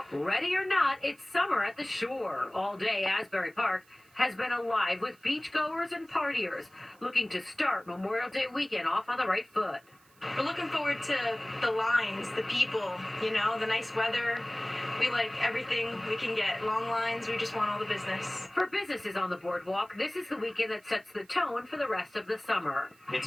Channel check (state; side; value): noise; right; hiss, 30 dB below the sound